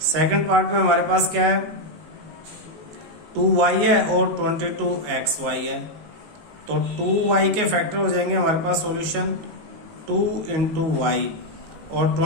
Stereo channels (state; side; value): late; left; 18 ms